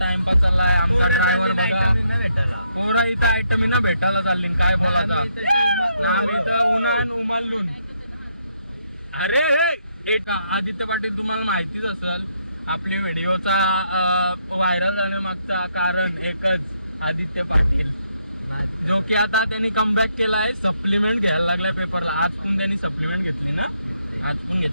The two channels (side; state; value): both; inverted; correlation -0.75